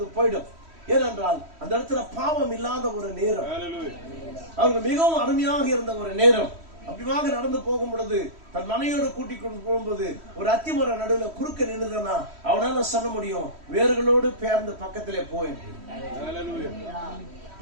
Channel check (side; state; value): left; late; 3.1 ms